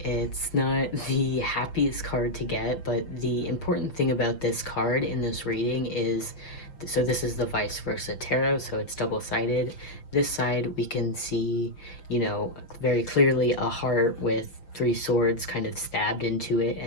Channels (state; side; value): late; right; 5.9 ms